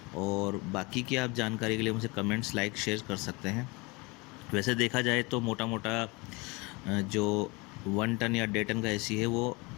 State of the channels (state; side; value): quieter; right; 26.3 dB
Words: और बाकी की आप जानकारी के लिए मुझे कमेंट्स लाइक शेयर कर सकते हैं। वैसे देखा जाए तो मोटा मोटा जो 1 टन या 1.5 टन का एसी है वो